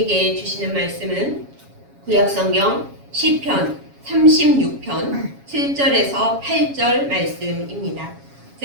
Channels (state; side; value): late; left; 7.2 ms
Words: 주시는 말씀은 구약성경 시편 36편 7절에서 8절 말씀입니다.